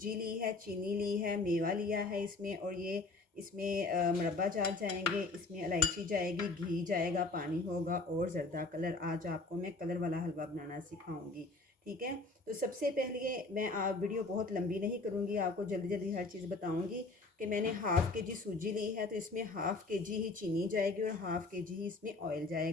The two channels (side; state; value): right; quieter; 3.4 dB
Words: ली है, चीनी ली है, मेवा लिया है इसमें, और ये इसमें मुरब्बा जात जाएंगे, इसमें इलायची जाएगी, घी जाएगा, पानी होगा और ज़रदा कलर। आज आपको मैं कलर वाला हलवा बनाना सिखाऊंगी, ठीक है। तो सबसे पहले मैं आप वीडियो बहुत लंबी नहीं करूँगी, आपको जल्दी जल्दी हर चीज़ बताऊँगी कि मैंने हाफ़ के जी सूजी ली है, तो इसमें हाफ़ के जी ही चीनी जाएगी और हाफ़ के जी ही इसमें ऑयल